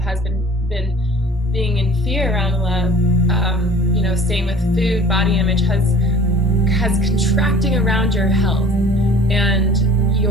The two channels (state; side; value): normal; both; correlation 0.48